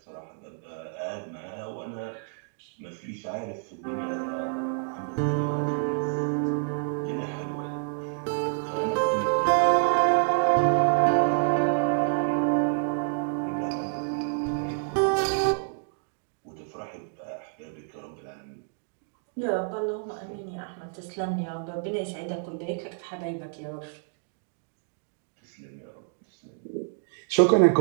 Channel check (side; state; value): left; silent; 59 dB below the other